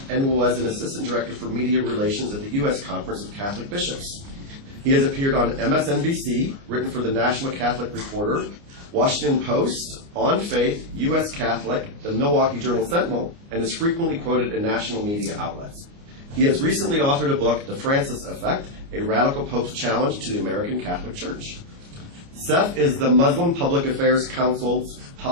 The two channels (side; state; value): left; late; 29 ms